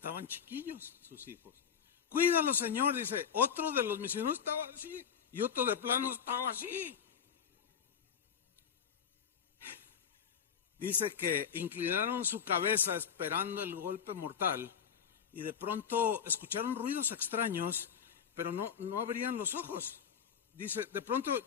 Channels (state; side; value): quieter; right; 7.6 dB